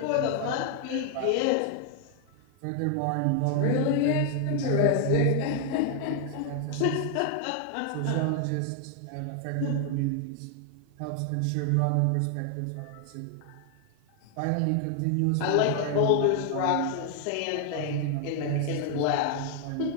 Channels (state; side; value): different; both; correlation 0.00